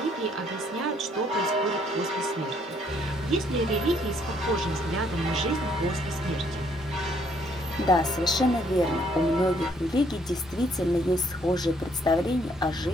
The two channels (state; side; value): normal; both; correlation 0.67